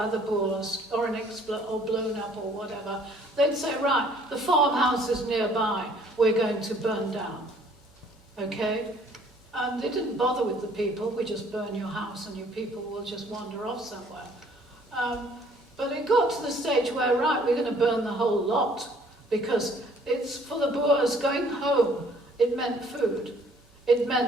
the Boers or or blown up or whatever, they'd say, right, the farmhouses nearby, we're going to burn down. Okay? And they didn't bother with the people. We just burn your house and your people will just wander off somewhere. But it got to the stage where, right, we're going to burn the whole lot, because it's for the Boers going home. It meant food. It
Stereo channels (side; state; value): both; normal; correlation 0.59